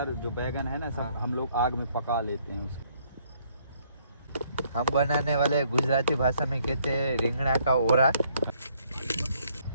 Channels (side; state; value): both; inverted; correlation -0.67